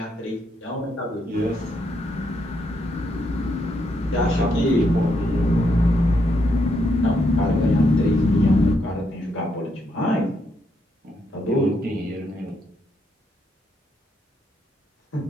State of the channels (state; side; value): normal; both; correlation 0.77